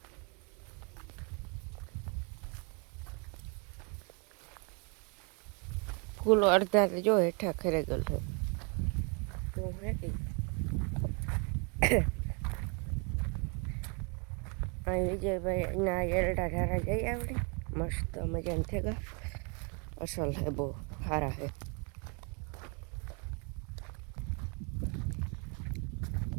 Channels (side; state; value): left; quieter; 34.2 dB